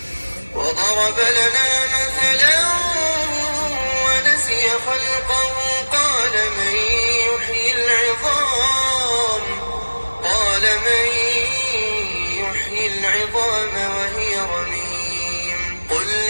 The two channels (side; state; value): both; inverted; correlation -1.00